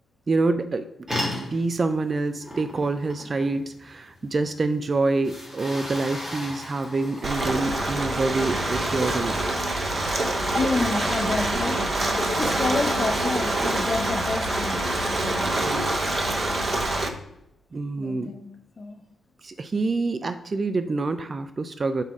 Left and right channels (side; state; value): both; normal; correlation 0.87